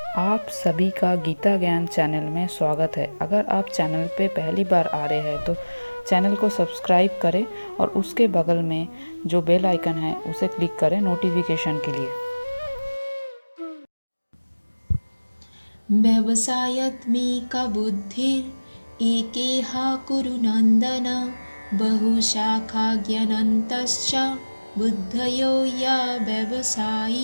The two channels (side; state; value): both; inverted; correlation -1.00